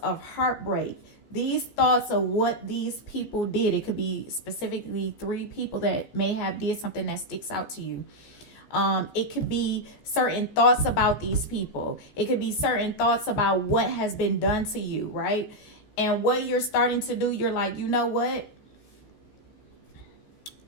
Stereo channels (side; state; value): right; late; 14 ms